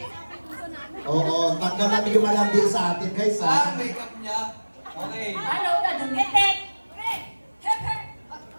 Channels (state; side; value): inverted; both; correlation -1.00